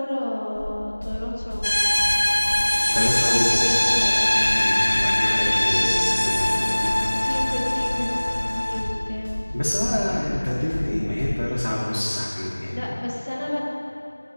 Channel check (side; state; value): both; inverted; correlation -1.00